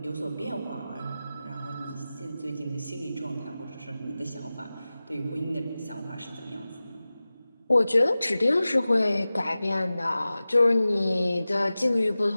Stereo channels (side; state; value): both; inverted; correlation -0.96